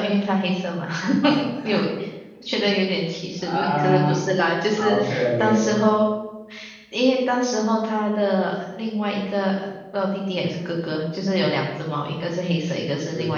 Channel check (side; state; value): both; identical; correlation 1.00